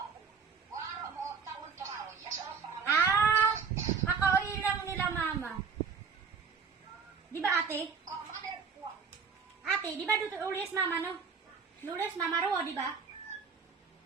Kakauwi lang nila mama. Di ba ate? Ate, di ba dito ulis mama no? Lulis mama ro, di ba?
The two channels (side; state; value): left; quieter; 5.9 dB